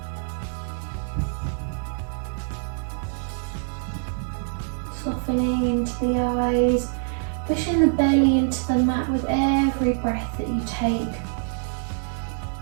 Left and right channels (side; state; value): left; silent; digital silence